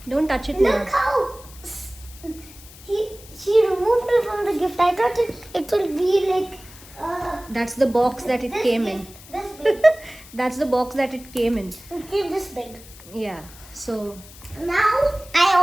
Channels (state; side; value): noise; left; hiss, 20 dB below the sound